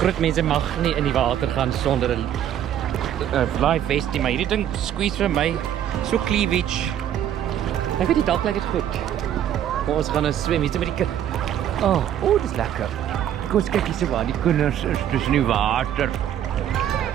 groot mense mag nie in die water gaan sonder 'n life vest nie, maar hierdie ding squeeze vir my so cleavage. Ek weet nie, dalk lyk dit goed. Maar ons gaan nou swem hier met die kind. Oh, dis lekker. Kom ons kyk hier so waar die kinders is tussen die water.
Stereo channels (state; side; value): quieter; left; 10.5 dB